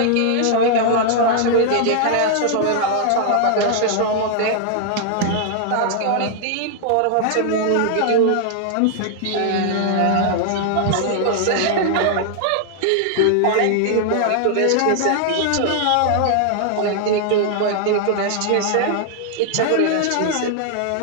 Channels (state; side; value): different; both; correlation 0.00